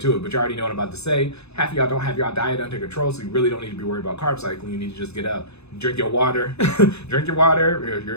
it, but you already know what I'm about to say. Half of y'all don't have your diet under control, so you really don't need to be worried about carb cycling. You need to just get up, drink your water, you're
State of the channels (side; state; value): right; late; 0.80 ms